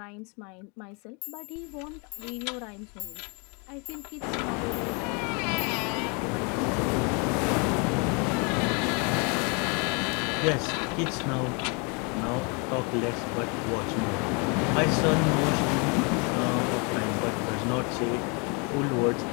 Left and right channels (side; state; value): right; quieter; 33.3 dB